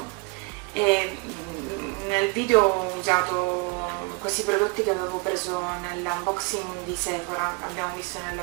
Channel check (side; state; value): left; quieter; 29.3 dB